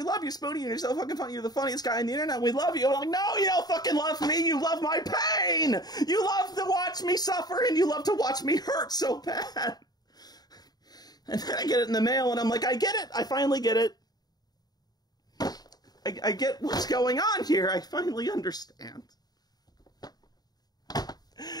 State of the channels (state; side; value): late; right; 0.19 ms